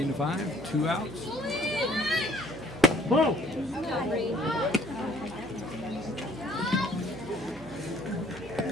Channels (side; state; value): right; noise; hum, 17 dB below the sound